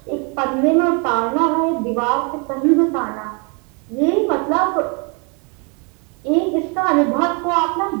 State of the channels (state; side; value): quieter; left; 34.0 dB